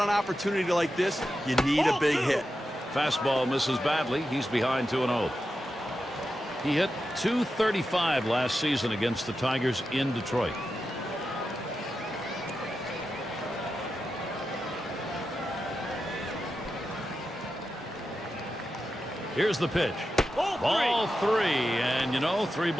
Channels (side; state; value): both; normal; correlation 0.90